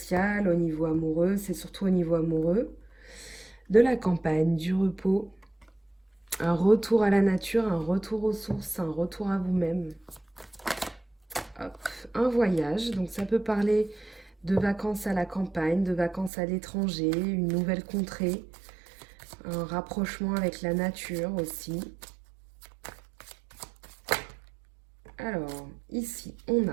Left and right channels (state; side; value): drops out; left; at 16.3 s